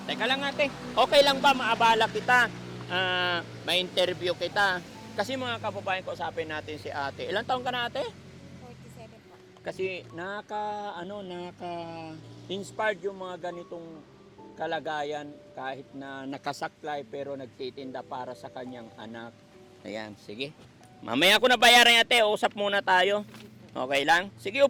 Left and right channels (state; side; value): identical; both; correlation 1.00